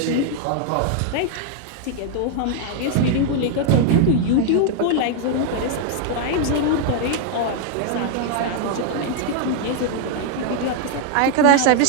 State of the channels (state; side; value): different; both; correlation 0.00